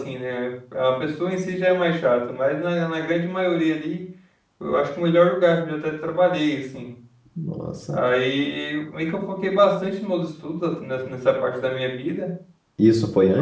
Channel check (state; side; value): identical; both; correlation 1.00